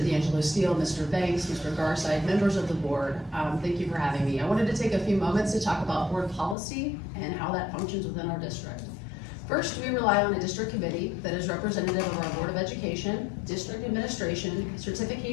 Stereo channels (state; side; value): drops out; right; at 6.6 s